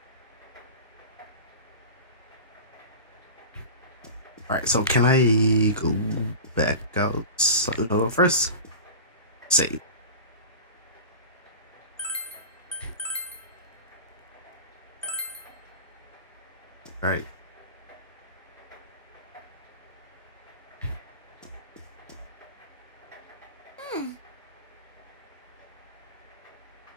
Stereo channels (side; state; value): both; inverted; correlation -0.31